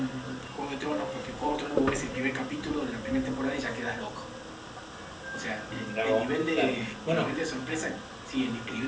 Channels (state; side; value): identical; both; correlation 1.00